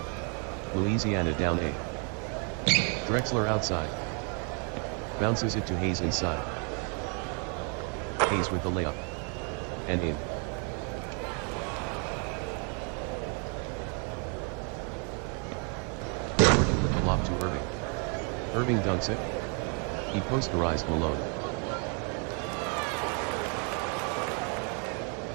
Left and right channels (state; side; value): quieter; left; 38.3 dB